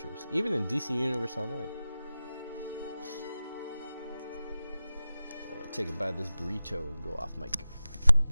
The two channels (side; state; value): both; inverted; correlation -0.94